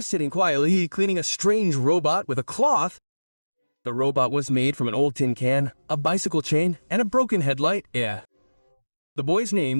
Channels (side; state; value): both; inverted; correlation -1.00